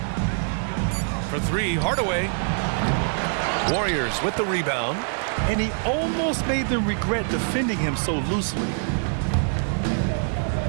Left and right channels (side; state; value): left; silent; 62 dB below the other